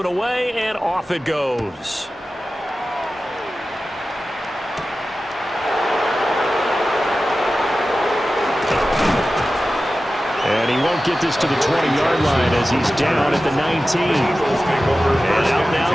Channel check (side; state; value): both; normal; correlation 0.94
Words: away, and off it goes. And he won't get this to the 20-yard line as he's down at the 19. And out